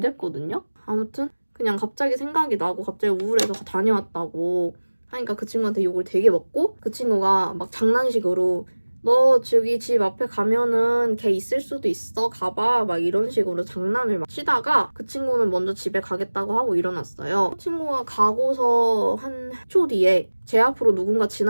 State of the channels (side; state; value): both; inverted; correlation -1.00